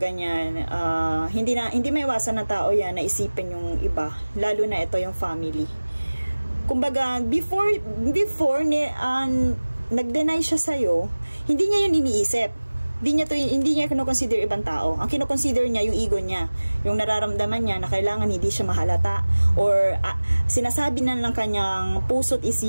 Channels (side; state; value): both; inverted; correlation -1.00